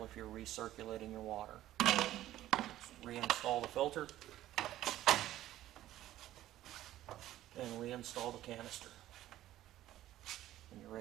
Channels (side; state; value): left; quieter; 13.9 dB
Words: if you're recirculating your water. Just reinstall the filter and reinstall the canister, and you're